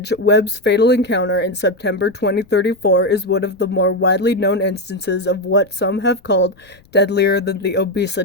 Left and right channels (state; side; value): noise; left; rumble, 29 dB below the sound